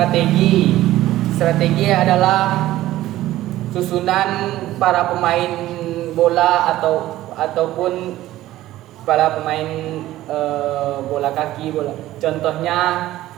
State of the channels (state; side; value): quieter; left; 15.1 dB